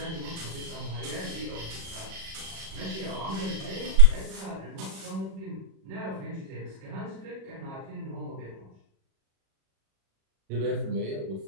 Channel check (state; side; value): late; left; 37 ms